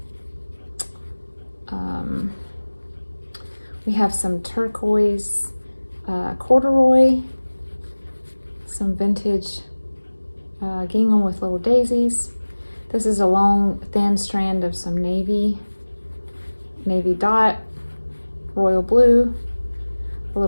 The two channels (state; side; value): inverted; both; correlation -1.00